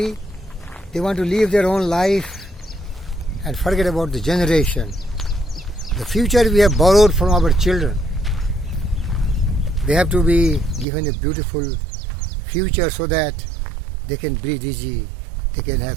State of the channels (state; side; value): drops out; left; at 10.9 s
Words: they want to live their own life and forget about the generation. The future we have borrowed from our children. They have to be given a beautiful future so that they can breathe easy, they can